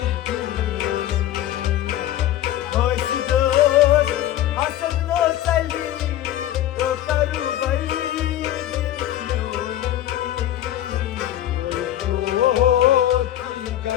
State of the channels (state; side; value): quieter; right; 12.9 dB